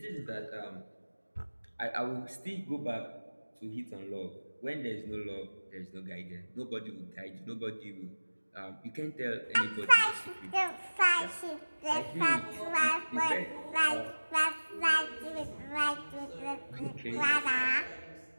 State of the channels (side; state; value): both; inverted; correlation -1.00